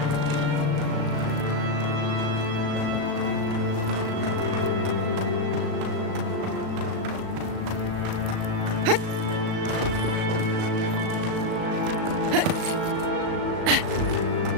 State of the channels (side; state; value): left; late; 37 ms